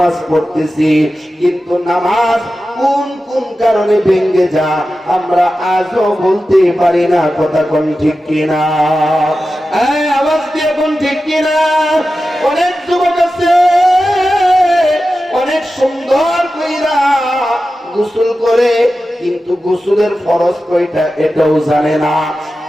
পড়তেছি, কিন্তু নামাজ কোন কোন কারণে ভেঙে যা আমরা আজও বলতে পারি না। কথা কোন ঠিক কিনা? আওয়াজ দিয়ে কোন ঠিক কিনা? অনেক যুবক আছে অনেক সুন্দর কইরা গোসল করে, কিন্তু গোসলের ফরজ কয়টা এটাও জানে না।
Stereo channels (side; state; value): both; normal; correlation 0.93